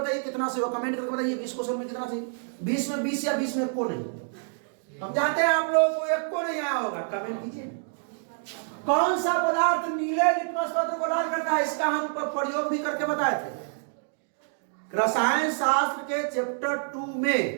कितना से हो, कमेंट करके बताइए 20 क्वेश्चन में कितना से? 20 में 20 या 20 में एक को नहीं? हम जानते हैं आप लोगों को एक को नहीं आया होगा, कमेंट कीजिए। कौन सा पदार्थ नीले लिटमस पत्र को लाल करता है? इसका हम प्रयोग भी करके बताए थे। रसायन शास्त्र के चैप्टर 2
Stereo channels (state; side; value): silent; left; digital silence